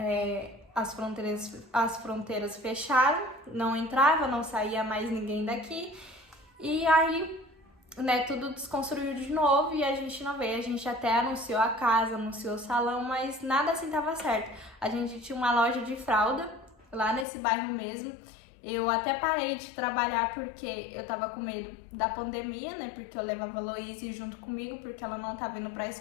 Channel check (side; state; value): right; drops out; at 17.2 s